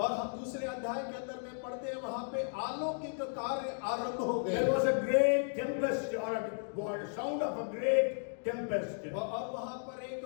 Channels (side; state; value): right; silent; digital silence